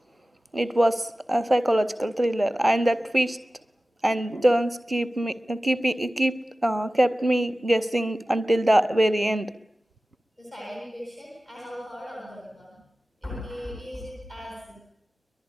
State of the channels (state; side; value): normal; both; correlation 0.96